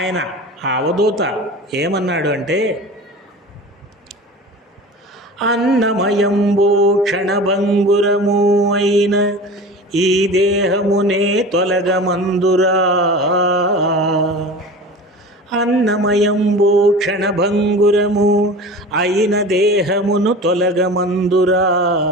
ఆ అవధూత ఏమన్నాడు అంటే, అన్నమయంబో క్షణభంగురము అయిన ఈ దేహమునే తొలగమందురా, అన్నమయంబో క్షణభంగురము అయిన దేహమును తొలగమందురా,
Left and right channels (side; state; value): both; normal; correlation 0.35